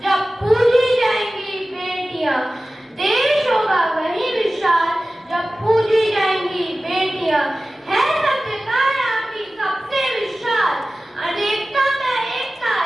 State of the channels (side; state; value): both; normal; correlation 0.96